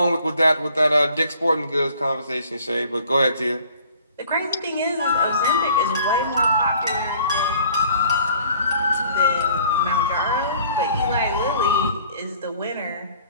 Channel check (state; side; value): inverted; both; correlation -0.54